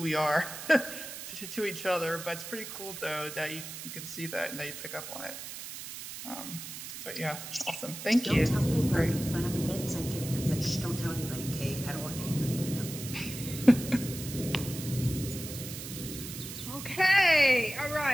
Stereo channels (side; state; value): right; noise; hiss, 9 dB below the sound